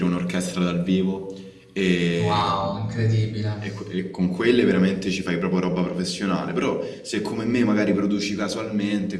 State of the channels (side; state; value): both; identical; correlation 1.00